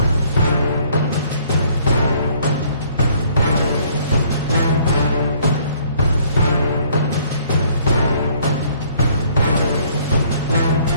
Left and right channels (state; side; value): inverted; both; correlation -0.61